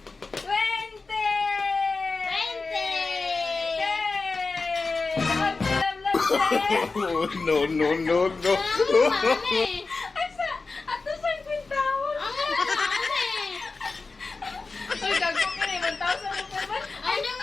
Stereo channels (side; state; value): right; quieter; 4.0 dB